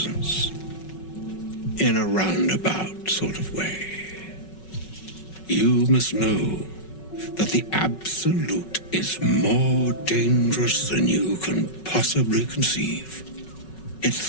in a roundabout sort of way. You must know that the Absolute is more dangerous than you can possibly conceive. It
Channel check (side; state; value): right; late; 5.4 ms